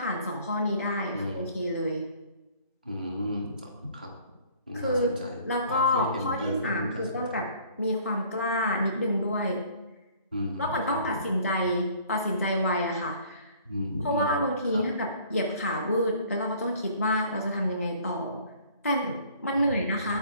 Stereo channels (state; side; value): inverted; both; correlation -0.55